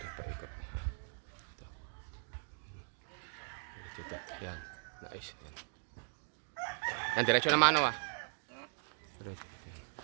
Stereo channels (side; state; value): left; silent; digital silence